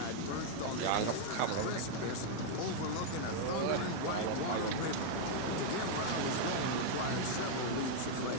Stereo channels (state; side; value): different; both; correlation -0.01